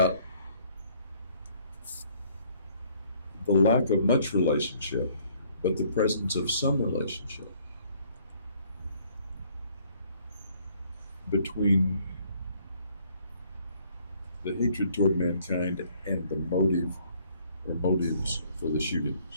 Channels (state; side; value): inverted; both; correlation -0.62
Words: the lack of much relationship, but the presence of some relationship between the hatred toward mankind and the motive or motives for the